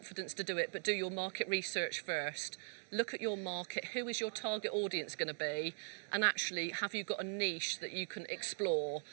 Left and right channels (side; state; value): left; silent; digital silence